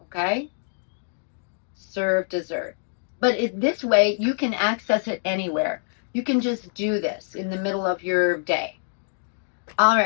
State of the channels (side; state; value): right; silent; digital silence